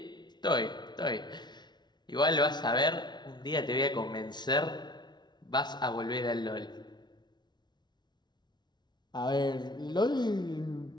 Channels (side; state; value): right; late; 0.20 ms